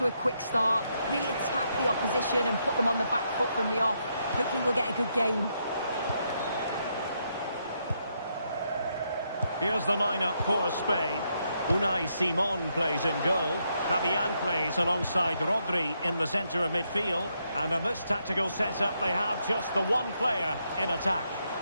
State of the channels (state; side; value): inverted; both; correlation -0.78